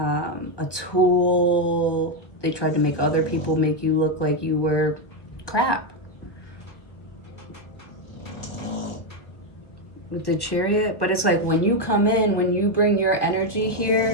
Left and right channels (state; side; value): late; right; 1.4 ms